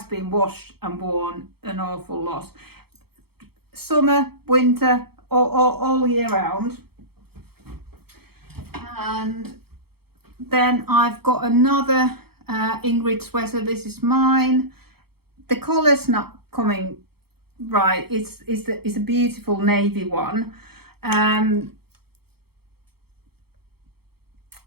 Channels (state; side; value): late; left; 0.96 ms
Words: been washed and worn an awful lot. Summer, winter, all year round. And then I've got another Ingrid sweater. This is mine. The collar's not coming right. It's a beautiful navy one, and